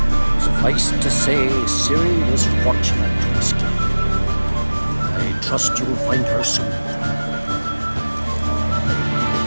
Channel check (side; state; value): both; inverted; correlation -1.00